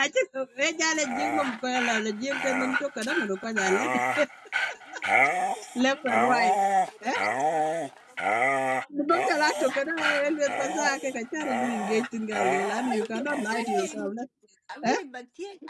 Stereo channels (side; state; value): both; identical; correlation 1.00